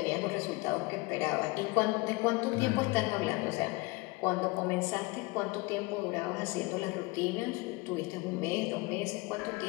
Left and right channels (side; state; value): right; quieter; 23.9 dB